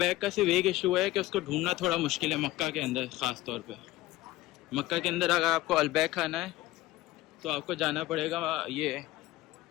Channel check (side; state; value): right; quieter; 17.4 dB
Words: का सिर्फ एक इशू है कि उसको ढूंढना थोड़ा मुश्किल है मक्का के अंदर। ख़ास तौर पे मक्का के अंदर अगर आपको अलबैक खाना है तो आपको जाना पड़ेगा, ये